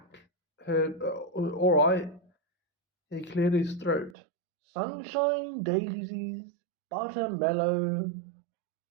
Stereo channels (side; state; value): left; drops out; at 4.2 s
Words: All right. He cleared his throat. Sunshine, daisies, buttermellow.